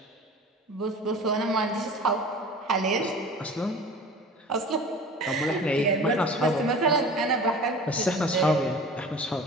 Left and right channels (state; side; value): normal; both; correlation 0.40